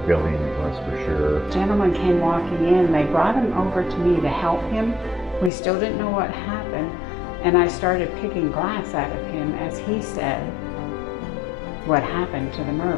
building it was for sure. A gentleman came walking in. They brought him over to me to help him. We still didn't know what happened, and I started picking glass out of him as he said what happened to the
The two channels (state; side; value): drops out; right; at 5.5 s